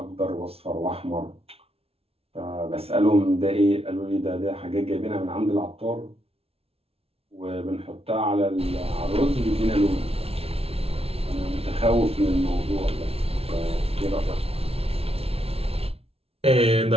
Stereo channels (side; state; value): left; late; 0.29 ms